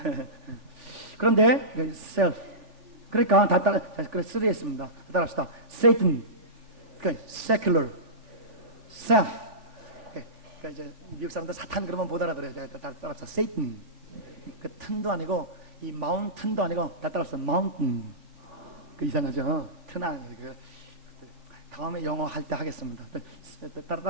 그런데 self 그러니까 다 따라 쓰리했습니다. 따라합시다. Satan, 그러니까 secular, self. 그러니까 이제 미국 사람들 사탄 그러면 못 알아들어요. 다 따라합시다. Satan. 그 튼도 아니고 이 mountain도 아니고 다 따라합시다. mountain. 그 이상하죠. 튼 아니고 다음에 영어 할 때 하겠습니다.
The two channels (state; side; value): late; left; 3.5 ms